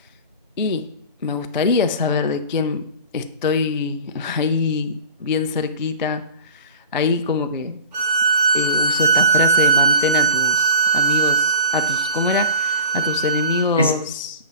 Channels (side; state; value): both; inverted; correlation -0.37